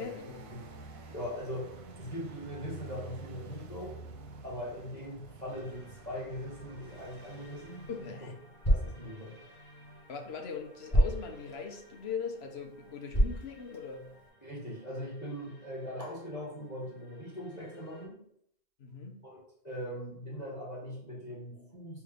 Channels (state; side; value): late; right; 1.5 ms